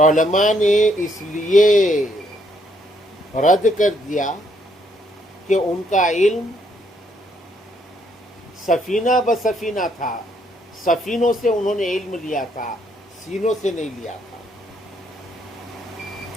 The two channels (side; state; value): both; normal; correlation 0.71